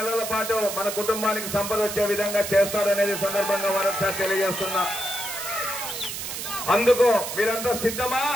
పాటు మన కుటుంబానికి సంపద వచ్చే విధంగా చేస్తారనేది సందర్భంగా మరొకసారి తెలియజేస్తున్నా. అందుకు మీరంతా సిద్ధమా?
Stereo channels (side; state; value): right; noise; hiss, 6 dB below the sound